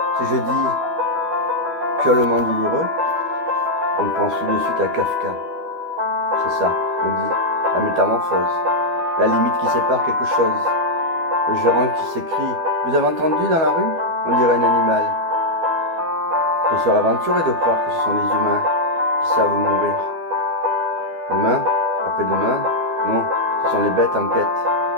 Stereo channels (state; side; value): late; left; 12 ms